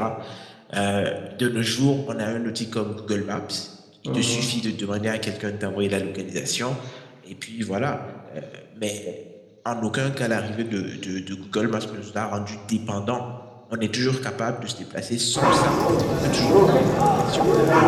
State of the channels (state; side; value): identical; both; correlation 1.00